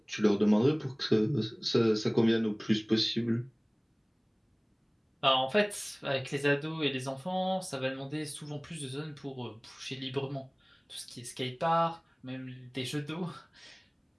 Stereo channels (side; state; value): both; identical; correlation 1.00